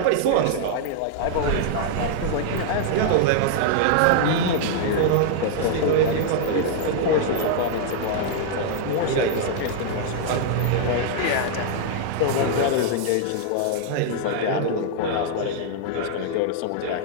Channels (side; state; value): both; different; correlation -0.01